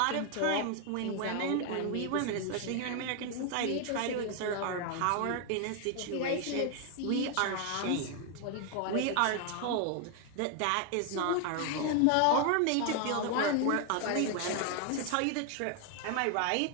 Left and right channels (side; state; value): both; different; correlation 0.00